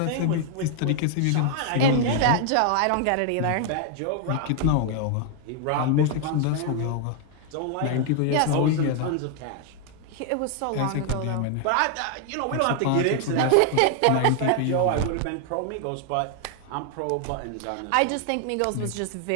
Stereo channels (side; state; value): both; different; correlation 0.00